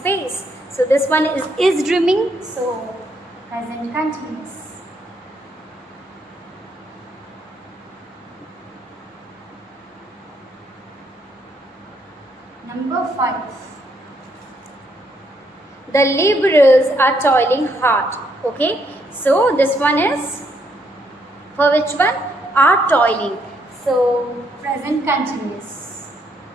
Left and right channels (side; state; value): both; normal; correlation 0.73